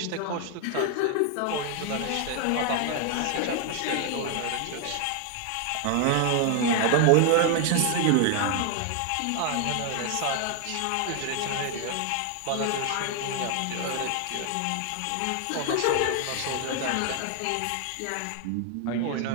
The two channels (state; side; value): different; both; correlation 0.00